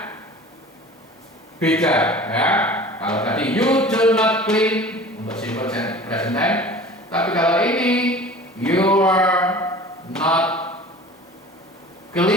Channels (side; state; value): both; normal; correlation 0.42